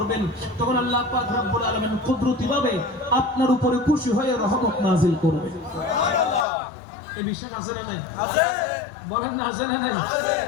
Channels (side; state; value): right; drops out; at 6.5 s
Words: তখন আল্লাহ পাক রব্বুল আলামিন কুদরতিভাবে আপনার উপরে খুশি হয়ে রহমত নাযিল করবে। এই বিষয় আছে না নাই? বলেন না, আছে না নাই?